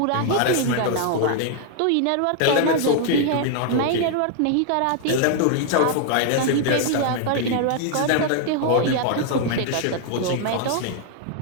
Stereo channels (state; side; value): different; both; correlation 0.00